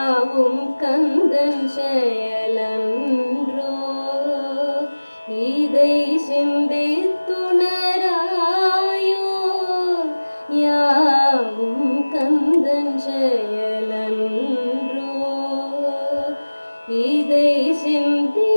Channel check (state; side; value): inverted; both; correlation -1.00